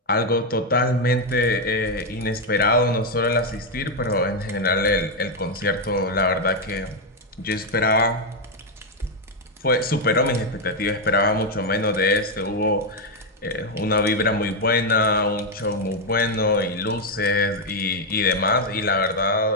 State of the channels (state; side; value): normal; both; correlation 0.03